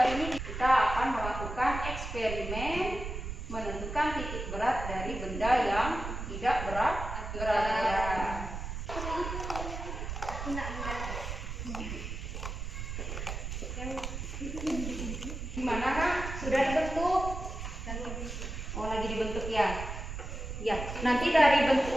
ini kita akan melakukan eksperimen menentukan titik berat dari benda yang tidak berat. Gimana, Kak? Sudah dibentuk? Oh, lagi dibentuk ya? Ya, nanti dari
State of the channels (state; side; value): noise; right; rumble, 6 dB below the sound